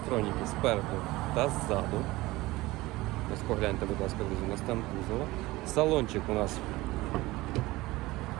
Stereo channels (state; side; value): quieter; left; 19.6 dB